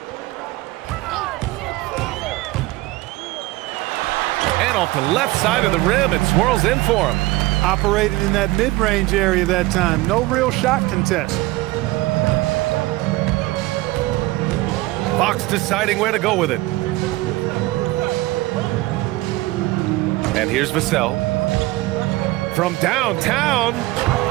And off the left side of the rim, it swirls in for him. Operated in that mid-range area that time. No real shot contest. Fox deciding where to go with it. And here's Vassell. From downtown,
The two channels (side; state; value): left; quieter; 19.3 dB